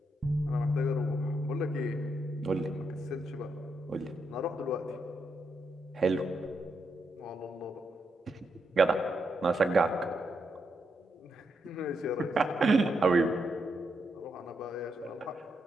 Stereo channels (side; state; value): both; normal; correlation 0.81